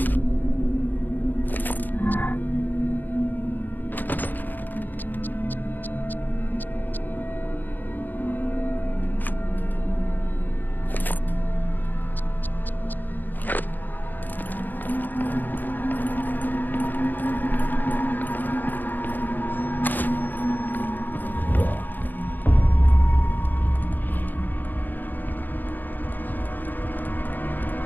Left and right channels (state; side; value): late; right; 0.087 ms